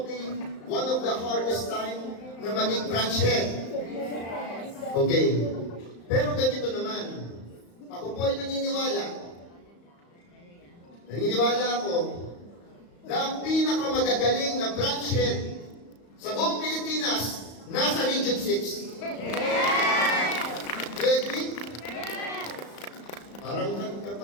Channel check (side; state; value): right; late; 35 ms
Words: one of the hardest time na maging branch head. Okay. Pero ganito naman, ako po ay naniniwala ako na ang pinakamagagaling na branch head sa buong Pilipinas nasa Region 6. Yes! Do you agree? Yes! Parang